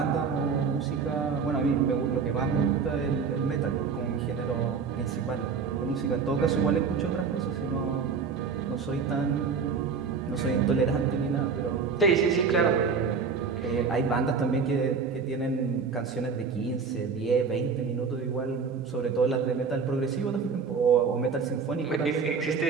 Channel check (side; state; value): left; quieter; 5.5 dB